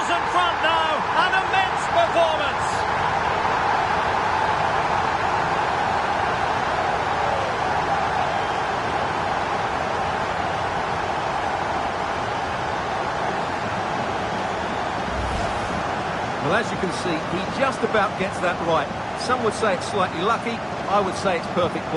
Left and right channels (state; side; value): identical; both; correlation 1.00